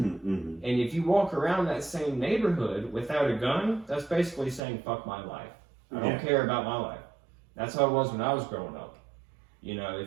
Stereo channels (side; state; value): left; drops out; at 4.6 s